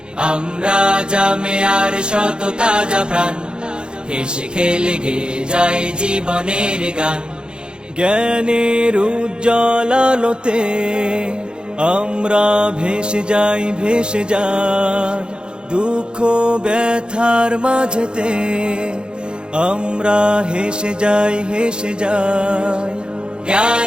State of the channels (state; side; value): late; left; 0.050 ms